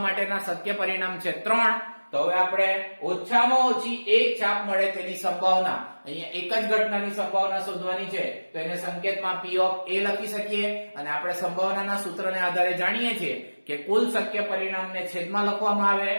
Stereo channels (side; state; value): both; inverted; correlation -1.00